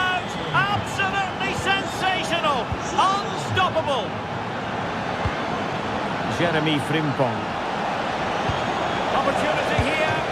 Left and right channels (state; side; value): identical; both; correlation 1.00